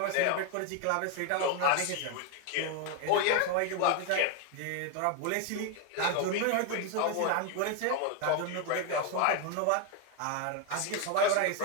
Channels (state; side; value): different; both; correlation 0.01